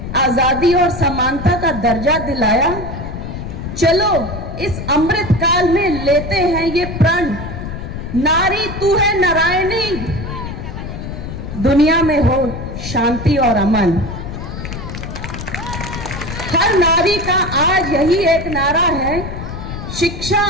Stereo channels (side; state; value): left; noise; rumble, 7 dB below the sound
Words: आजादी और समानता का दर्जा दिलाया? चलो इस अमृत काल में लेते हैं ये प्रण, नारी तू है नारायणी, दुनिया में हो शांति और अमन। हर नारी का आज यही एक नारा है, शिक्षा